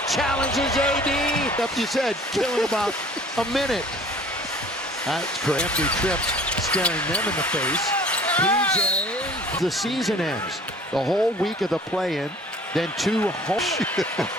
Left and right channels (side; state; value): both; normal; correlation 0.50